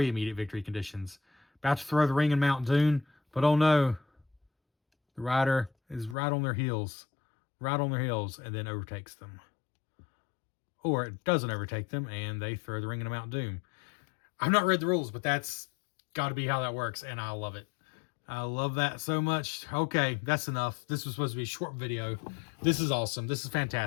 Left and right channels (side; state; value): right; drops out; at 6.2 s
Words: immediate victory conditions. About to throw the ring in Mount Doom, but oh no, the rider is right on their heels, and then overtakes them. Or it doesn't overtake them, and they throw the ring into Mount Doom. I've not read the rules, but that's got to be how that works, and I love it. I love that so much. Okay, that's enough. This was supposed to be a short video. This is awesome. This is